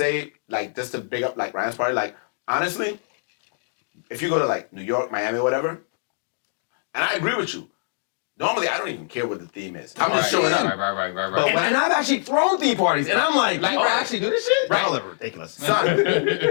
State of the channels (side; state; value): right; silent; digital silence